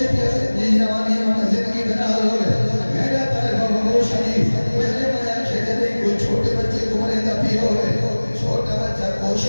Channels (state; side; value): inverted; both; correlation -1.00